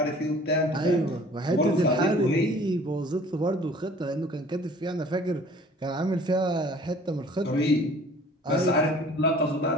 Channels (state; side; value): normal; both; correlation 0.51